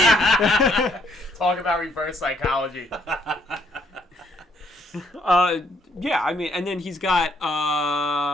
Talk about reverse psychology. Yeah, I mean, and then he's got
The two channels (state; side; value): normal; both; correlation 0.69